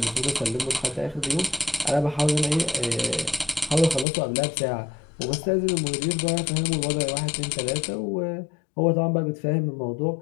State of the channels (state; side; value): drops out; right; at 4.0 s